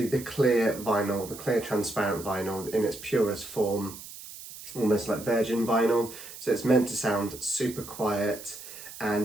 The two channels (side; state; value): right; noise; hiss, 14 dB below the sound